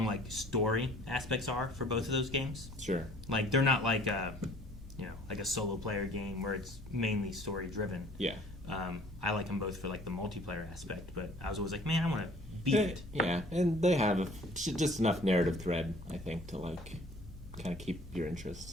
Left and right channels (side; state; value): both; normal; correlation 0.53